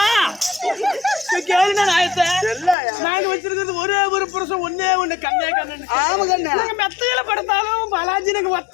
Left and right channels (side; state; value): right; drops out; at 2.8 s